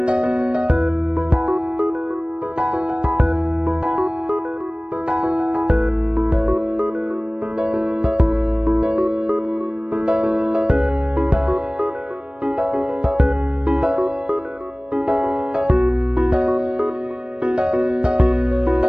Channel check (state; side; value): late; left; 0.054 ms